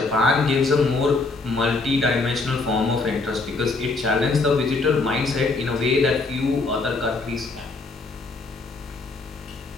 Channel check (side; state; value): right; quieter; 3.6 dB